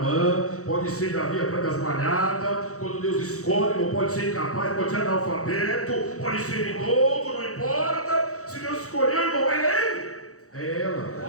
pode ser Davi atrás das malhadas. Quando Deus escolhe, irmão, pode ser incapaz, pode ser analfabeto, pode ser idoso, não importa. Se Deus escolheu, irmão, é ele, é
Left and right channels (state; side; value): late; right; 0.65 ms